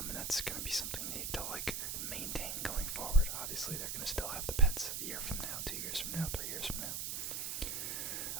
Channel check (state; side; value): noise; right; hiss, 2 dB below the sound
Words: And that's going to be something they need to maintain going forward. Obviously, they're going to still have the pets a year from now, 2 years from now, 3 years from now.